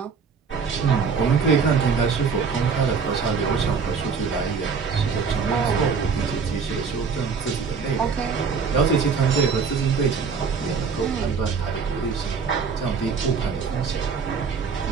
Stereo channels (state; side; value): quieter; left; 5.6 dB